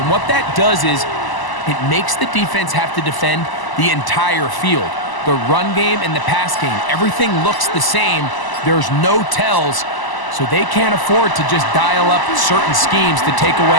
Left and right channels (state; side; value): late; right; 1.0 ms